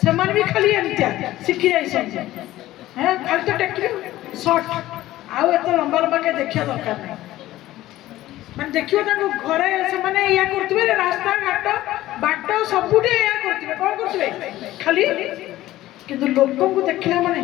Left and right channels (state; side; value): quieter; right; 15.5 dB